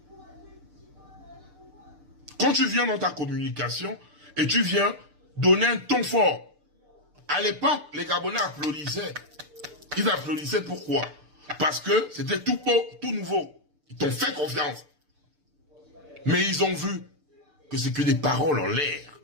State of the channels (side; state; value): left; late; 6.7 ms